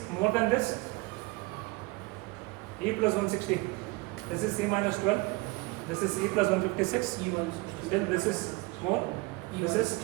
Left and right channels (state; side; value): quieter; left; 24.3 dB